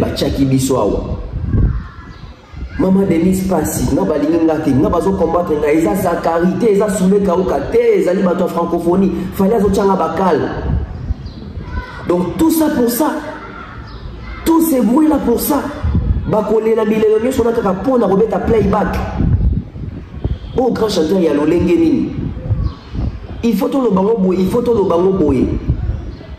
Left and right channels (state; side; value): identical; both; correlation 1.00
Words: chaki biso awa. Maman Denise Passi, na balinga te, na bazo combattre na eza sa carité, eza soule kauka te, ezali bato francophonie, fallait azo tchanga bakal. Donc tout ça pour ça. Tous ces bruits là pour ça. Bakole la bilelo nyo sona kaka pona robeta playback. Oh grand chanteur ya lolenge nini. Il faut tout le bango boye, il faut tout le bango boye.